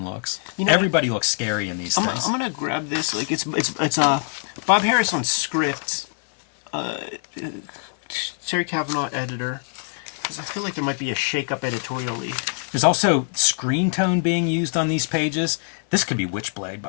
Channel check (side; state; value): right; silent; 61 dB below the other